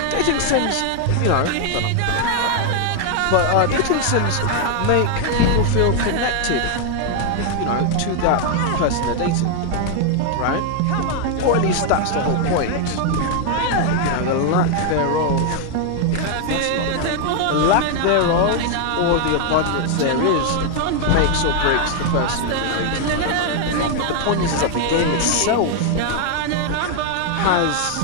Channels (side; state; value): both; different; correlation 0.00